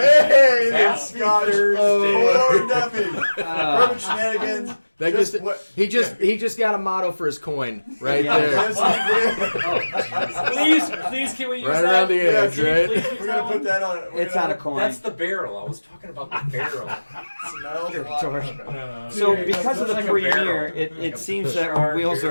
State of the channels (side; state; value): both; inverted; correlation -1.00